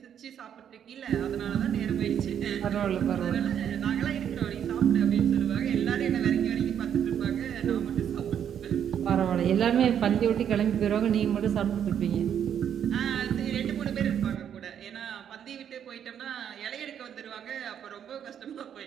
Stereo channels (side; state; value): left; quieter; 9.0 dB